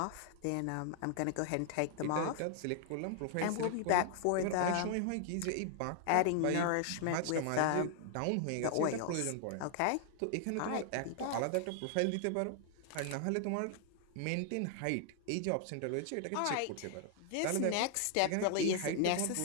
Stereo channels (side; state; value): both; different; correlation 0.00